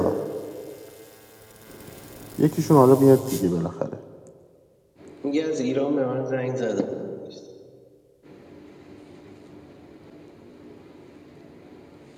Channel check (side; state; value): both; identical; correlation 1.00